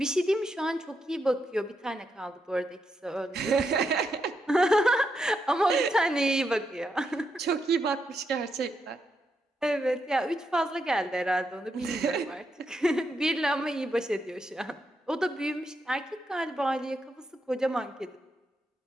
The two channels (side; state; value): both; normal; correlation 0.82